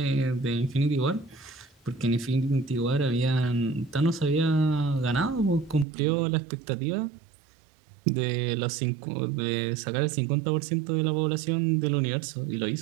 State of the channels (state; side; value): drops out; left; at 5.9 s